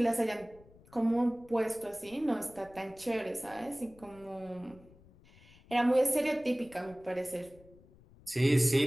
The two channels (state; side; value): noise; left; rumble, 25 dB below the sound